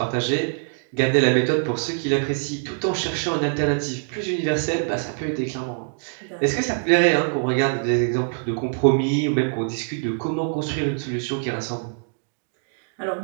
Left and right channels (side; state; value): left; silent; digital silence